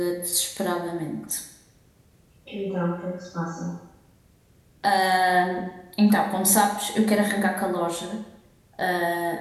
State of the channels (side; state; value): both; identical; correlation 1.00